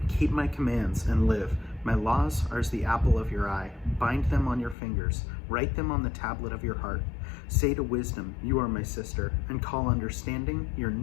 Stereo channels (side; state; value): right; drops out; at 4.8 s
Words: Keep my commands and live. My laws are as the apple of your eye. Bind them on your fingers. Write them on the tablet of your heart. Say to wisdom, you are my sister, and call understanding your